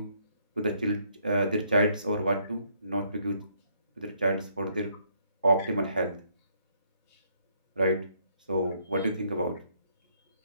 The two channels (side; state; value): both; inverted; correlation -0.69